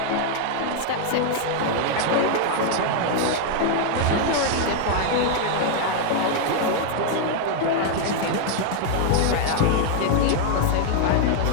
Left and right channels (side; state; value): both; different; correlation 0.00